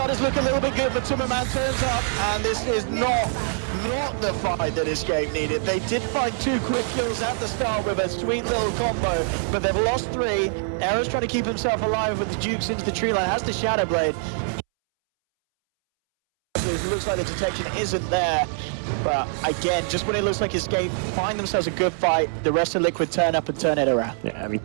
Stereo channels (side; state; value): left; silent; 63 dB below the other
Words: look a little bit good, but MATUMBAMAN turns up, and this is not the fight that Escape needed. They did find 2 quick kills at the start with a sweet little combo, but they've lost 3. Era's trying to keep himself alive with the Dukes into the tree line, has the Shadowblade. It looks like the detection isn't there, but again, just when it looks like Escape find themselves a good fight, the rest of Liquid turn up and turn it around. Yeah, I mean,